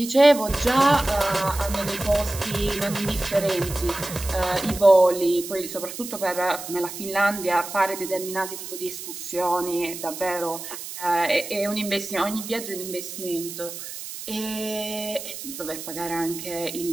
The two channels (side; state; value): right; noise; hiss, 10 dB below the sound